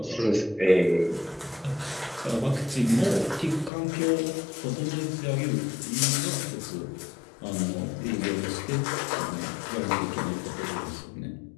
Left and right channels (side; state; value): right; drops out; at 3.7 s